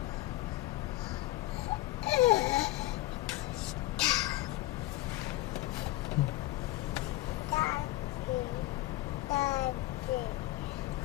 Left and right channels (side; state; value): right; quieter; 17.4 dB